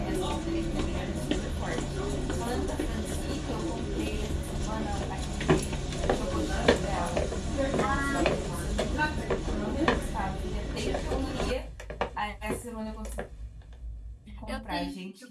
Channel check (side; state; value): both; identical; correlation 1.00